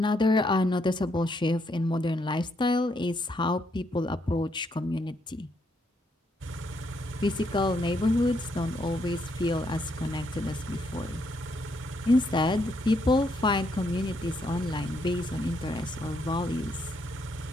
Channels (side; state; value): both; normal; correlation 0.75